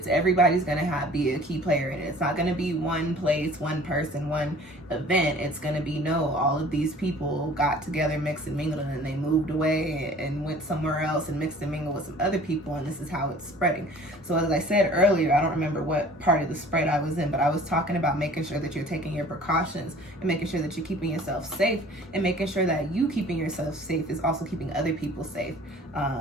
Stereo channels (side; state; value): both; normal; correlation 0.48